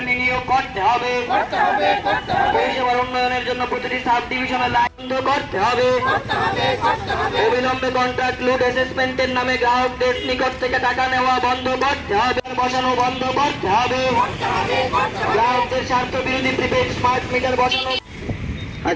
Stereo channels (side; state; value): both; identical; correlation 1.00